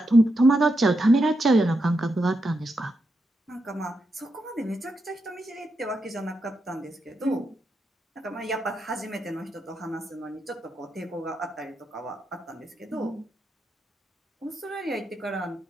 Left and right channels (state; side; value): normal; both; correlation 0.84